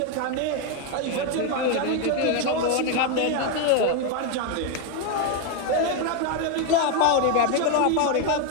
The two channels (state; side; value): different; both; correlation 0.01